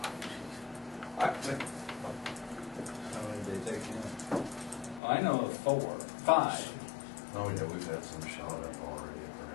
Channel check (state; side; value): drops out; right; at 5.0 s